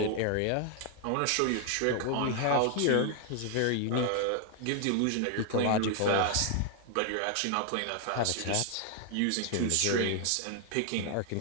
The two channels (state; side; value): different; both; correlation 0.00